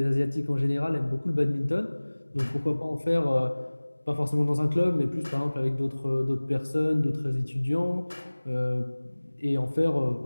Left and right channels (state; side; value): inverted; both; correlation -1.00